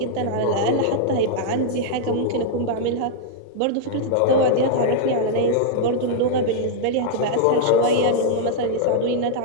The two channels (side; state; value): both; different; correlation -0.01